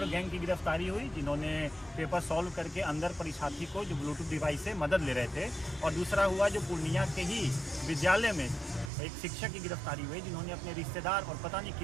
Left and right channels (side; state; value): left; drops out; at 8.9 s